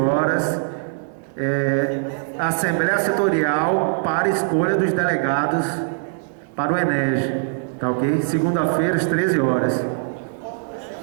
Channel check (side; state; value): left; silent; digital silence